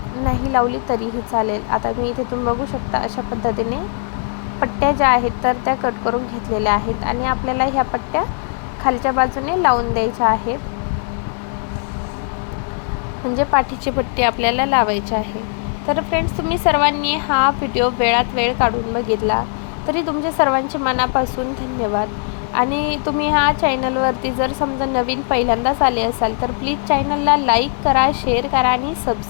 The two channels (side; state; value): right; silent; 58 dB below the other